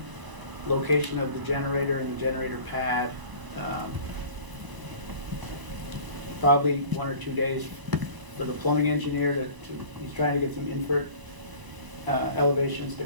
location of the generator and the generator pad. Probably 1 or 2 days for the plumbing engineer he's trying to get some invert elevations to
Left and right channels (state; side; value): late; left; 1.0 ms